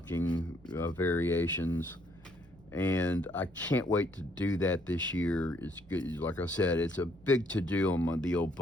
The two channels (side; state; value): left; noise; rumble, 27 dB below the sound